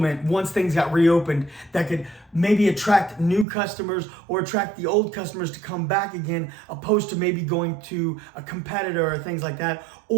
once things got reopened that could maybe attract new customers or attract the old customers to come back again, opposed to maybe going to a competitor or things like that,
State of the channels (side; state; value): left; drops out; at 3.5 s